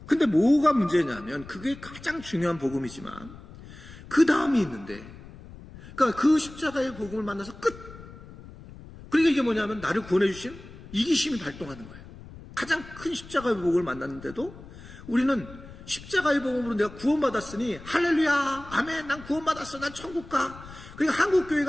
근데 뭐가 문제냐면 그게 가장 중요한 복음이지만 그 다음이 있는데 그러니까 그 십자가의 복음을 만나서 끝. 그러니까 이게 뭐냐면 나를 구원해 주신 이기심이 발동하는 거예요. 가장 큰 십자가의 복음을 만났는데도 우리는 십자가의 복음으로 내가 구원받았으니 할렐루야 아멘 난 구원받았어 난 천국 가. 그러니까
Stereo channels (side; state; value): left; noise; rumble, 17 dB below the sound